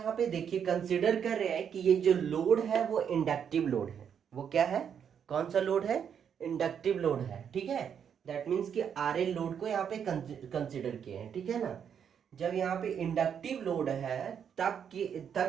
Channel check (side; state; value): left; quieter; 7.9 dB